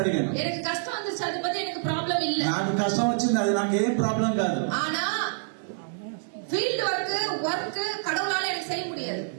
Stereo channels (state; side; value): silent; left; digital silence